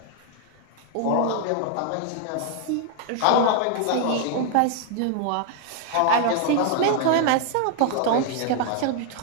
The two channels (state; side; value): different; both; correlation 0.00